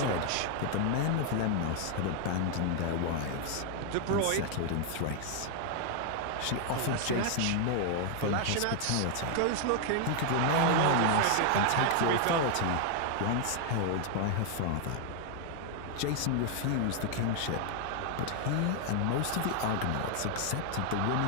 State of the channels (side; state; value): both; different; correlation 0.00